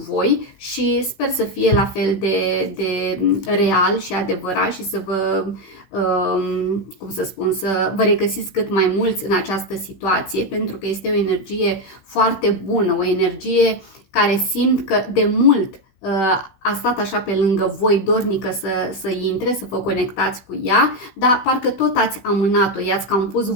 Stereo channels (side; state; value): right; late; 16 ms